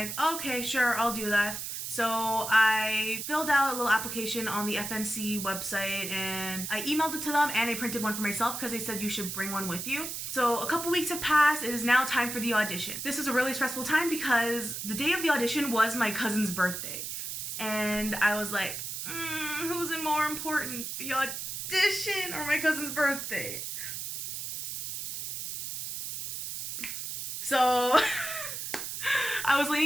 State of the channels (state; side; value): noise; right; hiss, 5 dB below the sound